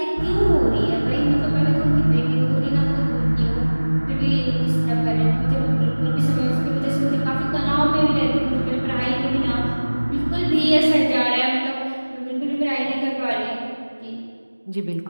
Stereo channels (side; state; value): both; inverted; correlation -1.00